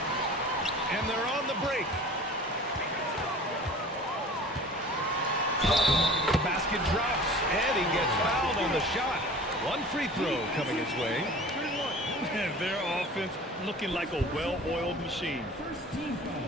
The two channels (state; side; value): normal; both; correlation 0.42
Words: And they're on the break. Basket basket drops, and he gets fouled on the shot. One free throw coming his way. And their offense looking like a well-oiled machine.